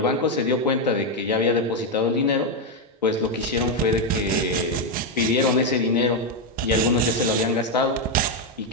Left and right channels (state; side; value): normal; both; correlation 0.04